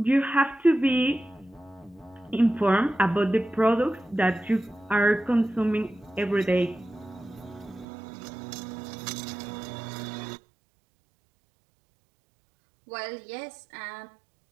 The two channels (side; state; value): left; drops out; at 7.9 s